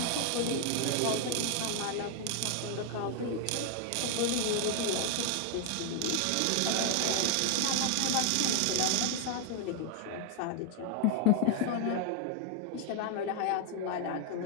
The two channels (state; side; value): different; both; correlation 0.00